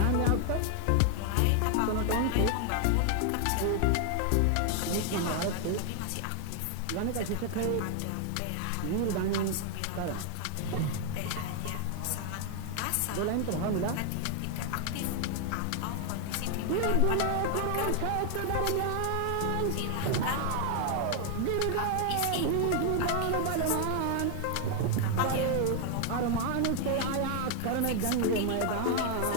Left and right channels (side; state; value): both; different; correlation 0.00